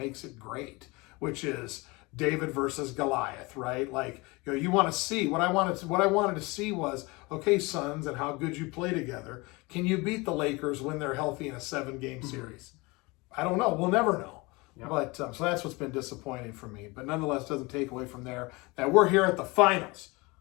it great, which is David versus Goliath, right? Like, you want to see what I wanted to see was, okay, Suns, and how good you play together. Can you beat the Lakers when they're healthy in a 7-game series? I don't know. We'll never know. Yep. But so that's what's been disappointing for me. But nonetheless, doesn't take away from there that we're here at the finals.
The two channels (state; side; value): quieter; right; 24.8 dB